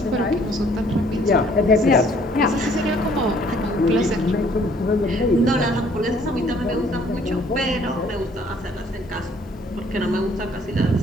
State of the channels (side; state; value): both; normal; correlation 0.60